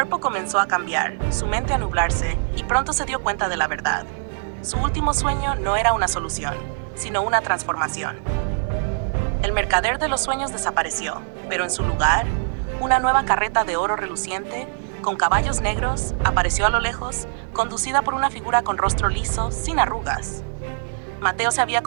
comenzó a cambiar, su mente a nublarse, y pronto se dio cuenta de la verdad. Su último sueño no era una solución, sino una transformación. El mercader de los sueños desapareció, pero en su lugar, una nueva carreta de oro reluciente con caballos negros, apareció a lo lejos, conducida por una figura con rostro liso, sin arrugas. Mateo se había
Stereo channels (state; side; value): silent; left; 56 dB below the other